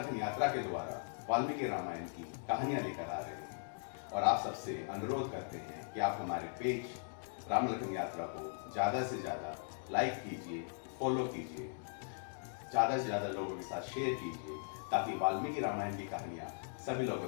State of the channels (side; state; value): right; silent; digital silence